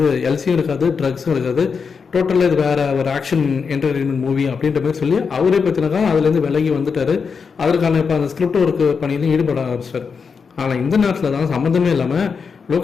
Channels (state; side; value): quieter; right; 5.6 dB